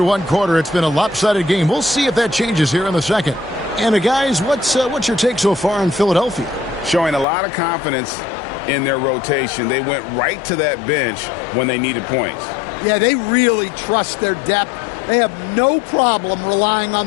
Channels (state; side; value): drops out; right; at 7.2 s